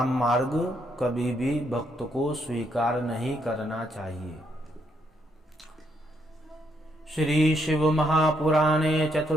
मार्ग कभी भी भक्त को स्वीकार नहीं करना चाहिए। श्री शिव महापुराणे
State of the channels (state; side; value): normal; both; correlation 0.75